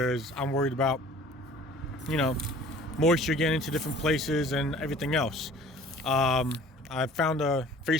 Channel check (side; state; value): both; normal; correlation 0.48